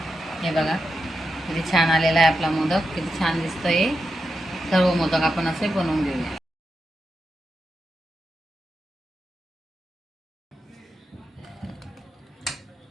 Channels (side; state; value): both; normal; correlation 0.87